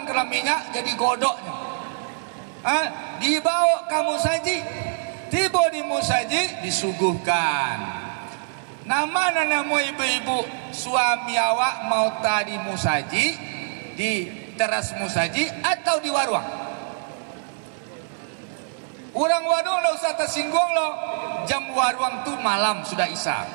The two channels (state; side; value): silent; left; digital silence